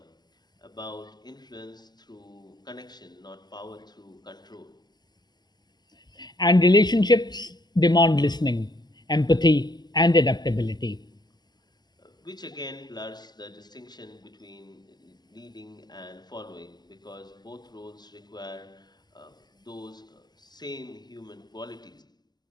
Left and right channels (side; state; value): right; late; 0.20 ms